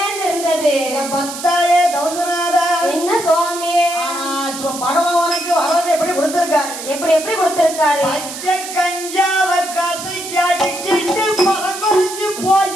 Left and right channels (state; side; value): noise; right; hiss, 9 dB below the sound